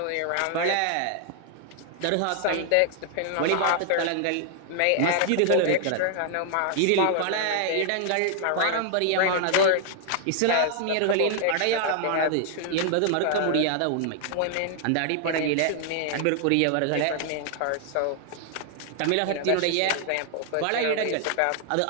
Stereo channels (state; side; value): different; both; correlation 0.00